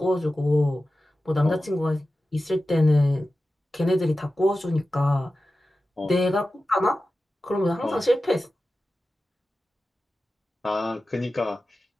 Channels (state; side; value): normal; both; correlation 0.94